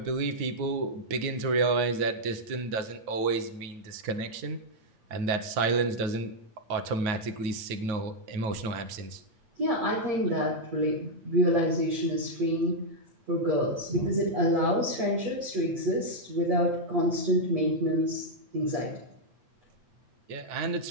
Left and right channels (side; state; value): left; late; 9.3 ms